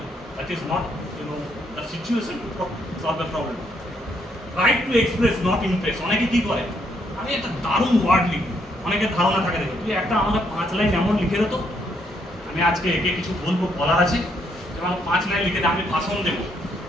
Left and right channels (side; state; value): both; normal; correlation 0.73